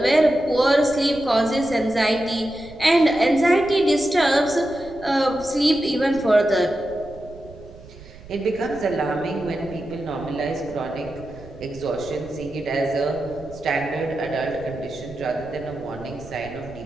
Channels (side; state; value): right; noise; rumble, 19 dB below the sound